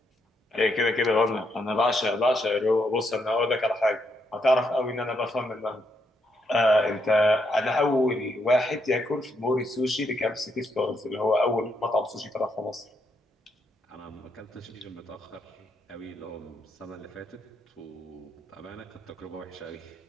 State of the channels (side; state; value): both; normal; correlation 0.77